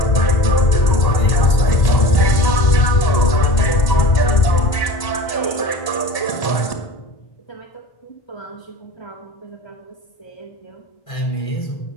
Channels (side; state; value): right; late; 1.0 ms